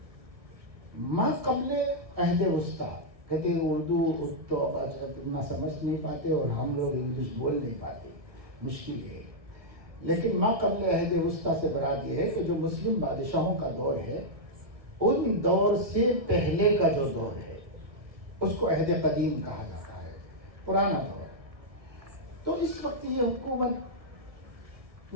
ما قبل عہد وسطیٰ، کہتے ہیں اردو تو اتنا سمجھ نہیں پاتے اور ہم لوگ انگلش بول نہیں پاتے، مشکل ہے۔ لیکن ما قبل عہد وسطیٰ سے مراد یہ ہے کہ جو مسلم بادشاہوں کا دور ہے، ان دور سے پہلے کا جو دور ہے اس کو عہد قدیم کہا جاتا ہے، پرانا دور۔ تو اس وقت یہ حکومت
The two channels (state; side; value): late; left; 1.7 ms